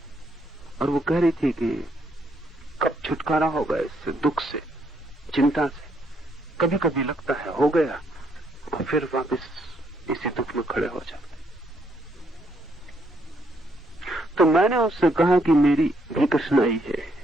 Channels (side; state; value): both; normal; correlation 0.72